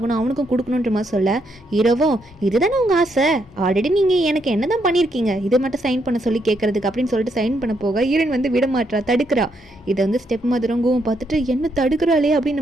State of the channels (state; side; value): normal; both; correlation 0.77